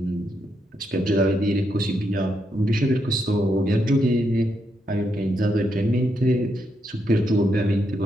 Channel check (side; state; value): both; normal; correlation 0.80